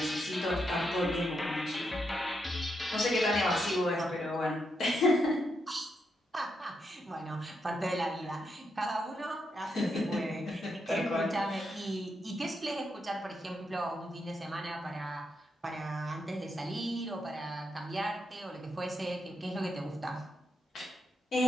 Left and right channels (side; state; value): both; normal; correlation 0.82